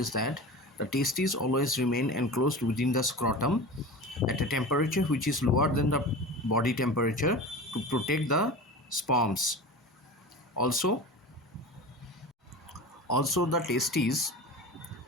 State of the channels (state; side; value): normal; both; correlation 0.32